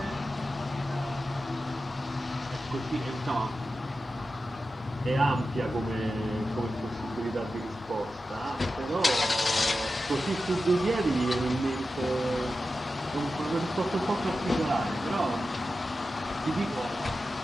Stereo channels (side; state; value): both; normal; correlation 0.92